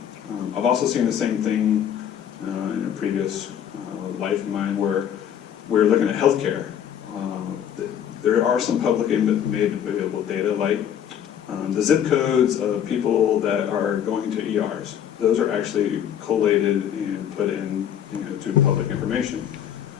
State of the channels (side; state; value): right; quieter; 9.4 dB